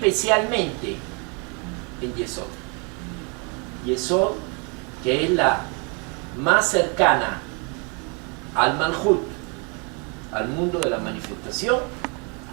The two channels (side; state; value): left; quieter; 33.8 dB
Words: en Yesod. Yesod, que es la más cercana al Malhut, al mundo de la manifestación,